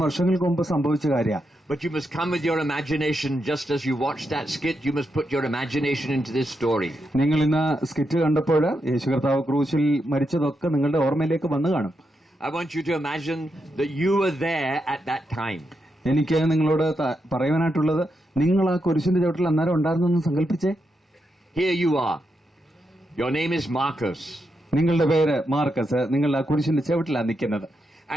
വർഷങ്ങൾക്ക് മുമ്പ് സംഭവിച്ച കാര്യമാണ്. But you must come with your imagination, just as you watched that skit, you must put your imagination into this story. നിങ്ങൾ ഇന്ന് സ്കിറ്റ് കണ്ടപ്പോൾ യേശു കർത്താവ് ക്രൂശിൽ മരിച്ചതൊക്കെ നിങ്ങളുടെ ഓർമ്മയിലേക്ക് വന്നു കാണും. I want you to imagine that you were there at that time. എനിക്ക് നിങ്ങളോട് പറയുവാനായിട്ടുള്ളത്, നിങ്ങൾ ആ കുരിശിന്റെ ചവിട്ടിൽ അന്നേരം ഉണ്ടായിരുന്നെന്ന് സങ്കല്പിച്ചേ. Here you are. Your name is Marcus. നിങ്ങളുടെ പേര് മാർക്കസ്. നിങ്ങൾ ആ കുരിശിന്റെ ചവിട്ടിലാണ് നിൽക്കുന്നത്.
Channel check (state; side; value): normal; both; correlation 0.84